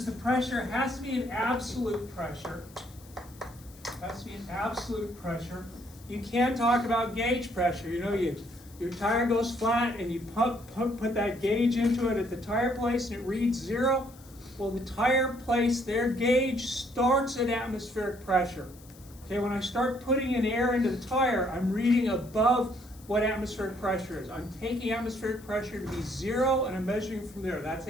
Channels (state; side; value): noise; left; hiss, 23 dB below the sound